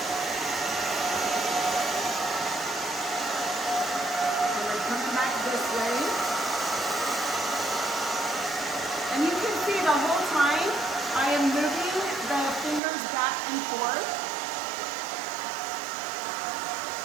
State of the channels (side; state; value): left; drops out; at 12.8 s